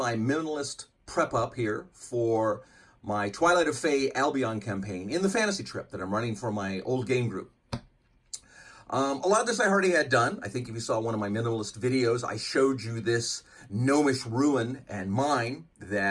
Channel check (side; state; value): both; identical; correlation 1.00